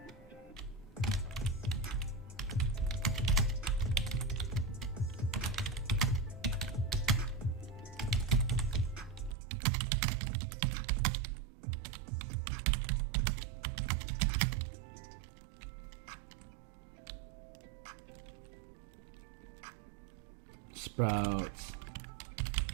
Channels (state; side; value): drops out; left; at 9.3 s